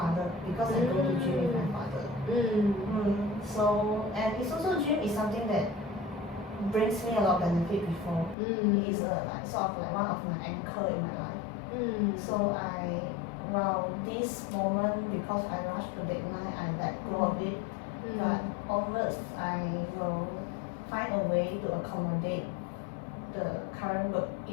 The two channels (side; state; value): right; drops out; at 8.3 s